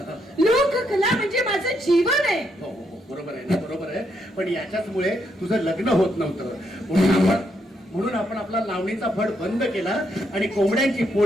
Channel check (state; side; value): normal; both; correlation 0.77